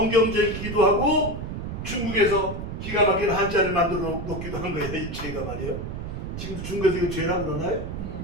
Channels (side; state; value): right; noise; rumble, 6 dB below the sound